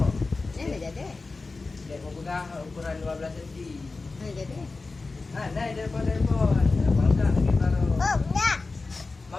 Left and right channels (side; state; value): right; quieter; 3.8 dB